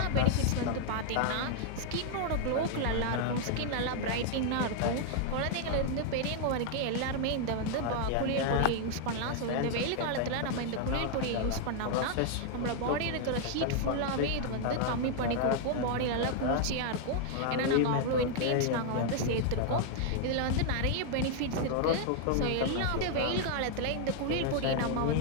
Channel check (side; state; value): both; different; correlation 0.00